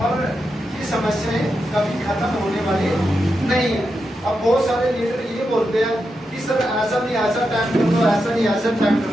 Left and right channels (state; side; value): normal; both; correlation 0.87